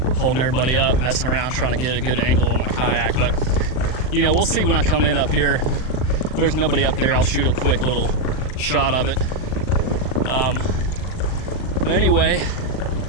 holding everybody up, messing around trying to get a good angle on my kayak. But you know, we'll see when I come in up here. If there's nobody up there, I'll shoot a quick little shot of it. But anyway,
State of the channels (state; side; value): late; right; 39 ms